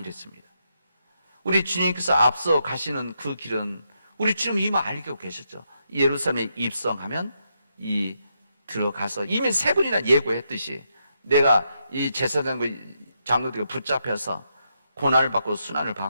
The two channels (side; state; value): both; inverted; correlation -0.81